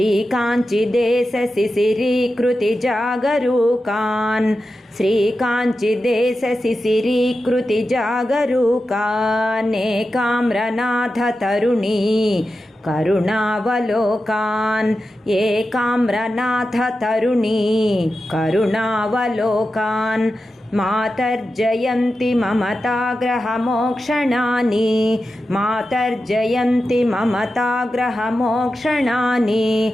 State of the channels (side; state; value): both; normal; correlation 0.91